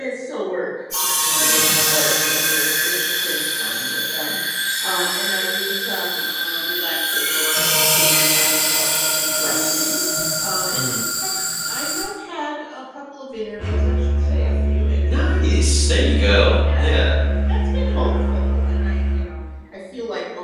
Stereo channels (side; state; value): both; identical; correlation 1.00